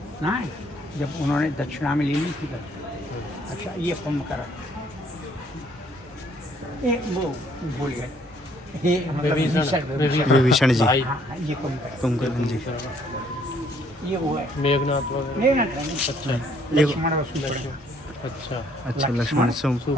ना, जब उन्होंने दक्षिणा में ले ली थी तब। अच्छा ये कुंभकर्ण, ये वो भूल गए, ये मतलब विभीषण जी, हाँ, ये कुंभकर्ण जी, ये वो है मेघनाथ वगैरह। मेघनाथ नहीं, अच्छा लक्ष्मण और सुभद्रा। अच्छा अच्छा लक्ष्मण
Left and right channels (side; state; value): both; normal; correlation 0.64